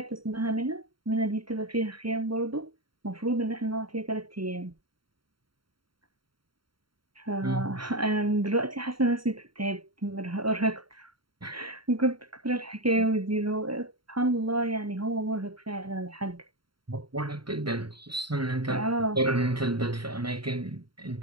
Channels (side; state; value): left; late; 0.73 ms